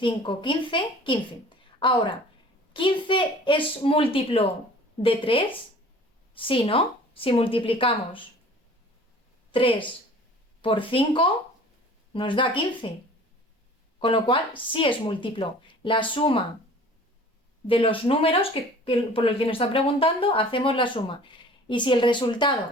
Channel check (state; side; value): normal; both; correlation 0.47